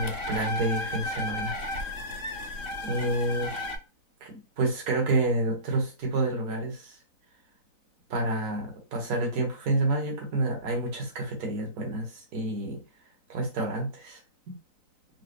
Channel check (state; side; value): late; left; 3.9 ms